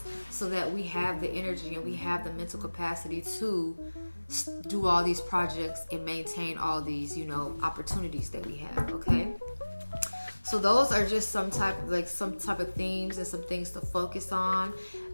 so that we have the energy and we have the mental capacity to do all these projects and maintain all these, you know, opportunities that we have, okay? So those are just some type of themes and some things to focus on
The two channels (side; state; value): both; inverted; correlation -1.00